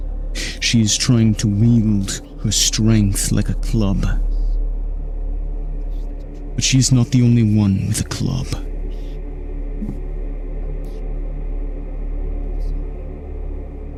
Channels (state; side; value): identical; both; correlation 1.00